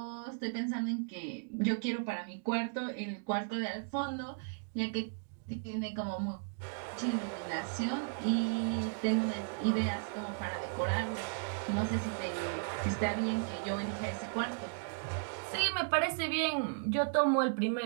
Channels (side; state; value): left; silent; digital silence